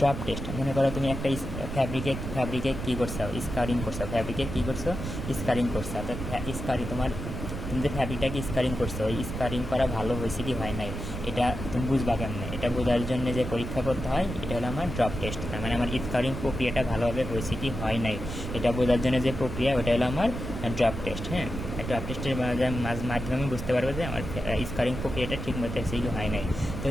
টেস্ট মনে করো তুমি একটা ফ্যাব্রিকে কী করছো, স্কারিং করছো, ফ্যাব্রিকে কী করছো, স্কারিং করছো। তো তুমি যে ফ্যাব্রিকটাকে স্কারিং করছো, ওই স্কারিং করা ভালো হয়েছে কি হয় নাই, এটা তুমি বুঝবা কেমনে? এটা বোঝার জন্য যে পরীক্ষা করতে হয়, এটা হলো আমার ড্রপ টেস্ট। তার মানে আমার স্কারিং প্রক্রিয়াটা ভালোভাবে হয়েছে কি হয় নাই, এটা বোঝার জন্য যে প্রক্রিয়া, ওটা হলো আমার ড্রপ টেস্ট। হ্যাঁ, ড্রপ টেস্টের মাধ্যমে আমি বুঝতে পারবো যে আমার স্কারিং প্রক্রিয়াটা ঠিক মতো হয়েছে কি হয় নাই। তো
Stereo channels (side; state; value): right; noise; rumble, 6 dB below the sound